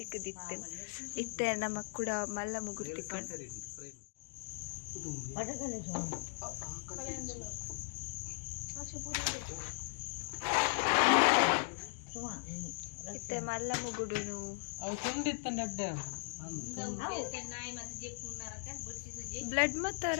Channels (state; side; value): silent; right; digital silence